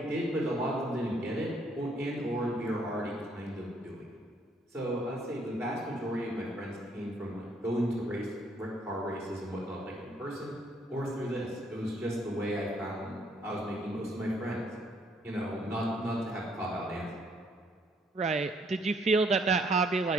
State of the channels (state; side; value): normal; both; correlation 0.67